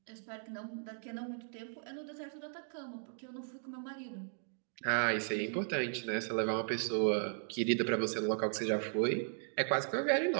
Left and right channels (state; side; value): silent; left; digital silence